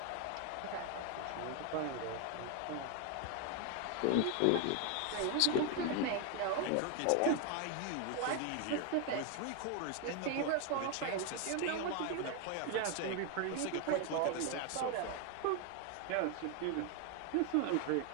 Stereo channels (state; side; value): different; both; correlation 0.01